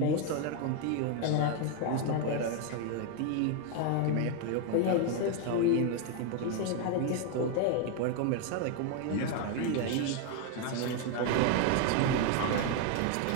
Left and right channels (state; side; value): different; both; correlation 0.01